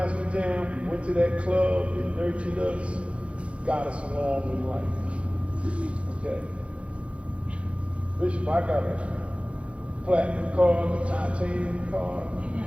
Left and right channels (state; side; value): late; left; 0.061 ms